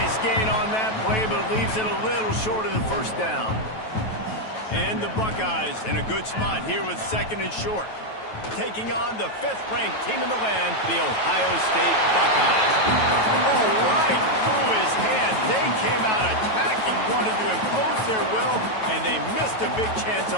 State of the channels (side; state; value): right; late; 9.2 ms